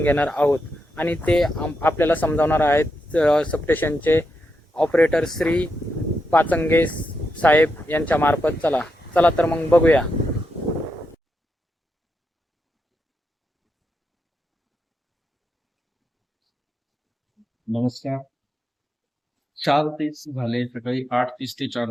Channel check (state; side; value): normal; both; correlation 0.84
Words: घेणार आहोत। आणि ते आपल्याला समजावणार आहेत सबस्टेशनचे ऑपरेटर श्री पाचंगे साहेब यांच्या मार्फत। चला तर मग बघूया। नमस्कार। 4:30 झाले, सकाळी 8:30 ते